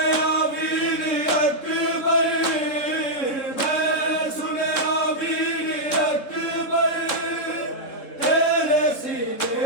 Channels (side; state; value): right; late; 3.8 ms